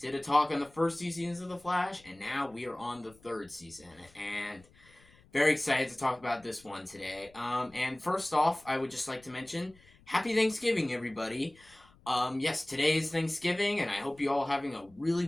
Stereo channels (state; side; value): noise; left; rumble, 27 dB below the sound